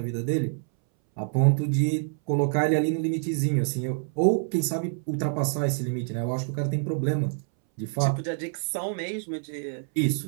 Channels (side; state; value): left; silent; 60 dB below the other